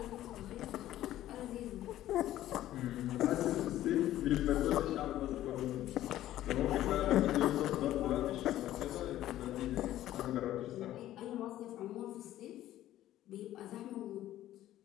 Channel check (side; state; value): right; quieter; 13.6 dB